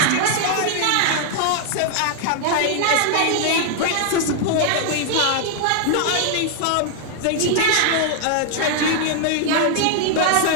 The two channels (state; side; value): different; both; correlation 0.00